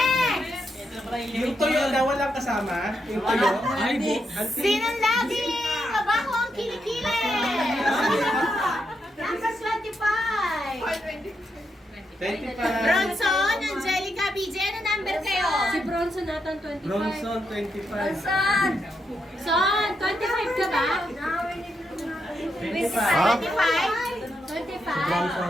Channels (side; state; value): both; normal; correlation 0.82